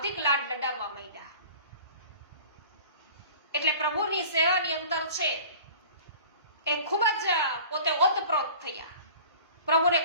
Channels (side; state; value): both; inverted; correlation -0.43